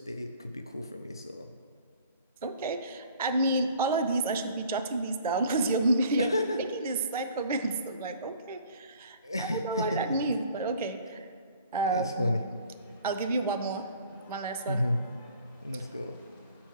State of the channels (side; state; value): both; inverted; correlation -0.52